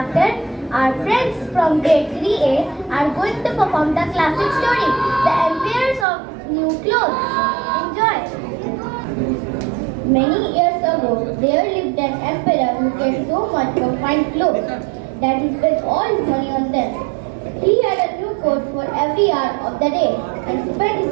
Our friends from grade 3A are going to perform the classic story, The Emperors of New Clothes. Enjoy! Many years ago, there lived an emperor who cared so much for fine clothes that he spent all his money on them. He had a new coat for every hour of the day and spent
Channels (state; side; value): drops out; left; at 6.1 s